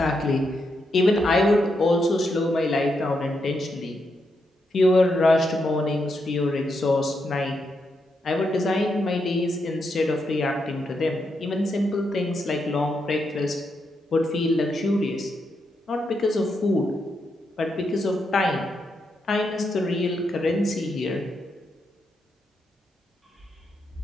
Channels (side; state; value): both; normal; correlation 0.82